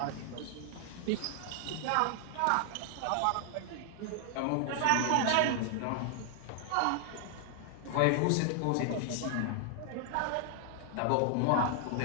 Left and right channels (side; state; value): both; different; correlation 0.00